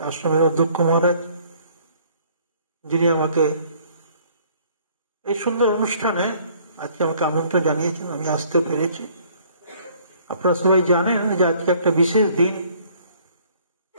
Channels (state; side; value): inverted; both; correlation -0.59